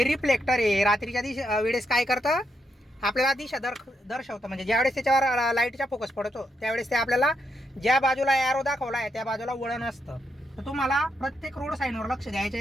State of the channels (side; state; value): both; normal; correlation 0.80